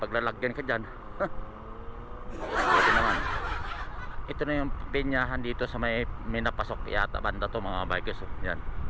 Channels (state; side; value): identical; both; correlation 1.00